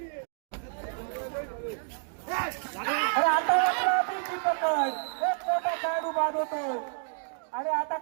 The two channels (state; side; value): silent; left; digital silence